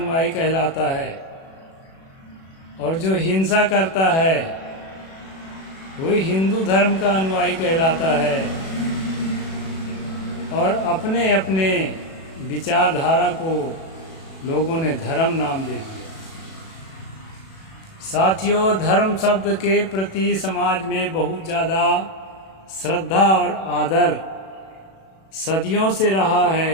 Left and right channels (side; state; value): right; late; 37 ms